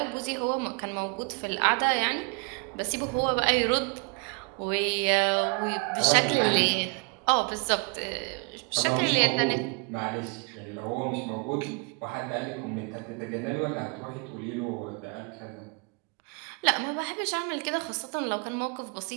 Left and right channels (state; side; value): quieter; left; 33.6 dB